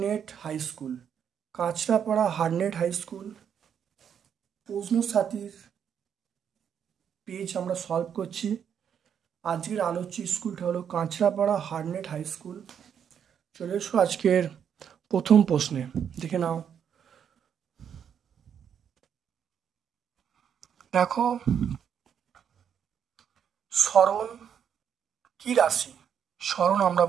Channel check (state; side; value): quieter; left; 8.2 dB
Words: high school. Kanchrapara Harnett high school প্রশ্ন সাথীর page আমরা সলভ করছি। আজকের আলোচ্য স্কুলটা হলো কাঁচরাপাড়া হারনেট হাই স্কুল। চলে এসো আজকের প্রথম প্রশ্নে, দেখে নাও। দেখো, সরণ কি রাশি? সরণ আমরা